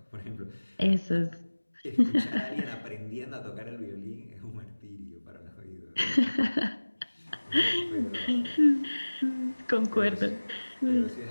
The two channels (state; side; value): inverted; both; correlation -1.00